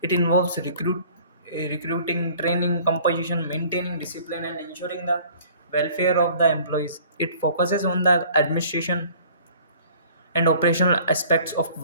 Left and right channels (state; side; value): inverted; both; correlation -0.51